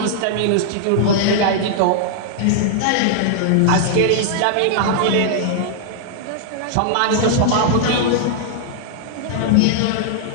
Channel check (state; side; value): different; both; correlation -0.01